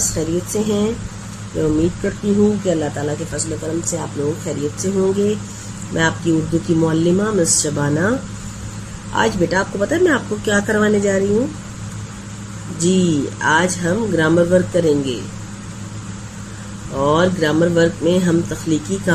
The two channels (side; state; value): both; identical; correlation 1.00